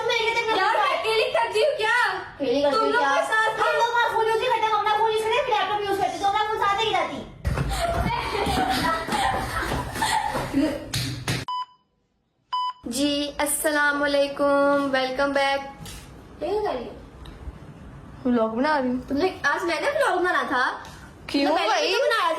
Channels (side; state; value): both; identical; correlation 1.00